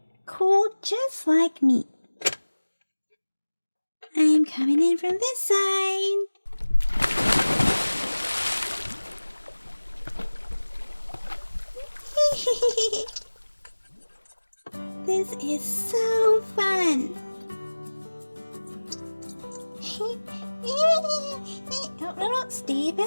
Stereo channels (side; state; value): both; inverted; correlation -1.00